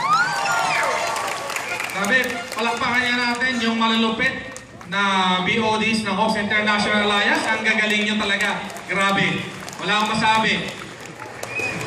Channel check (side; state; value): both; identical; correlation 1.00